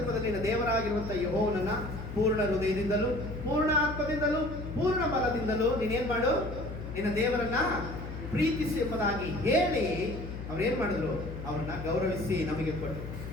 ನಿನ್ನ ದೇವರಾಗಿರುವಂಥ ಯೆಹೋವನನ್ನ ಪೂರ್ಣ ಹೃದಯದಿಂದಲೂ ಪೂರ್ಣ ಆತ್ಮದಿಂದಲೂ ಪೂರ್ಣ ಬಲದಿಂದಲೂ ನೀನೇನು ಮಾಡು? ನಿನ್ನ ದೇವರನ್ನ ಪ್ರೀತಿಸು ಎಂಬುದಾಗಿ ಹೇಳಿ ಅವ್ರೇನು ಮಾಡಿದ್ರು? ಅವ್ರನ್ನ ಗೌರವಿಸಿ ನಮಗೆ ಕೊಟ್ಟರು.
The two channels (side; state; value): left; noise; hum, 8 dB below the sound